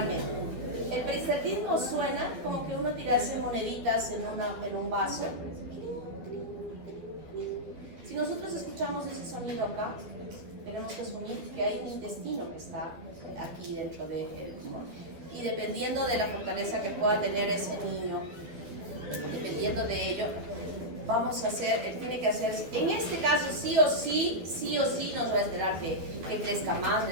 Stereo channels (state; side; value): late; left; 11 ms